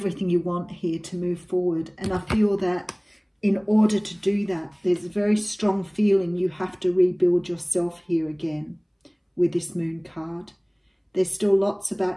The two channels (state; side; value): identical; both; correlation 1.00